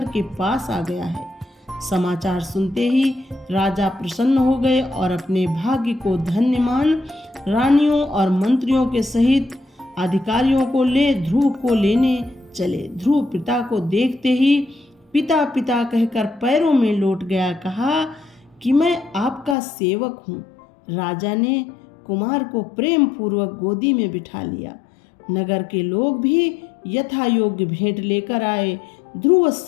के पास आ गया है। समाचार सुनते ही राजा प्रसन्न हो गए और अपने भाग्य को धन्य मान रानियों और मंत्रियों के सहित अधिकारियों को ले ध्रुव को लेने चले। ध्रुव पिता को देखते ही पिता पिता कहकर पैरों में लौट गया। कहा कि मैं आपका सेवक हूँ। राजा ने कुमार को प्रेम पूर्वक गोदी में बिठा लिया। नगर के लोग भी यथा योग्य भेंट लेकर आए। ध्रुव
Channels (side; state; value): right; drops out; at 19.6 s